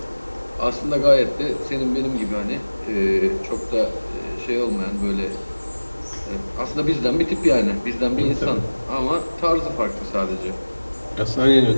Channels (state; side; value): inverted; both; correlation -1.00